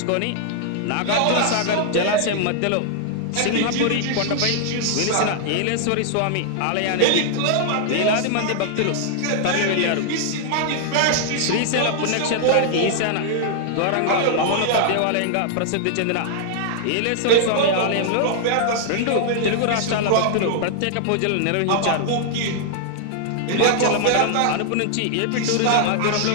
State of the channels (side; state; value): both; different; correlation -0.01